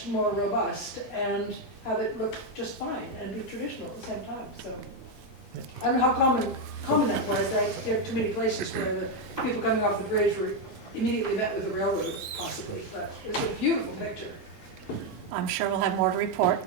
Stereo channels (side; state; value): both; normal; correlation 0.04